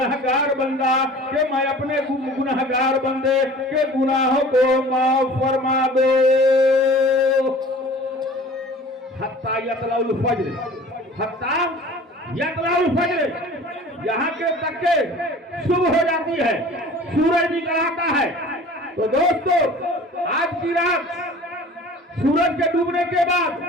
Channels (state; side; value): normal; both; correlation 0.44